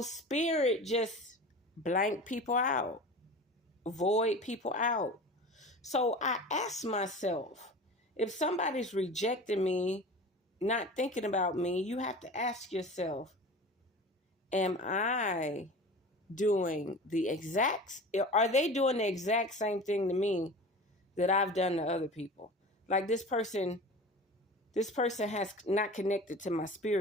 spirit just blank people out, void people out. So I asked myself, if somebody's rejecting me, not thinking about me, you have to ask yourself, am I doing are they doing the exact same thing to me that I've done to other people? Like this person has not connected to my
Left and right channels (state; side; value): normal; both; correlation 0.35